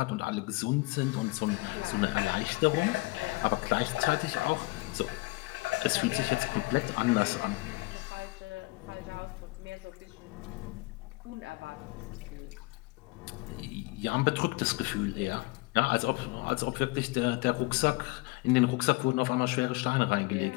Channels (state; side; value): quieter; right; 24.1 dB